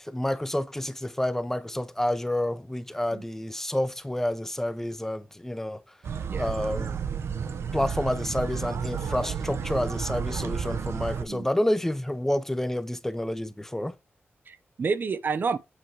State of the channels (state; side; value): normal; both; correlation 0.91